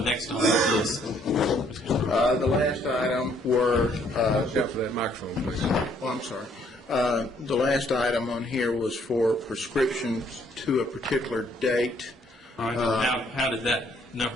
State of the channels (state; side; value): normal; both; correlation 0.66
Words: on the list? The last item were, Watch out for that microphone, please. I'm sorry. The last item on here was for prescriptions to a particular date. All right. How did that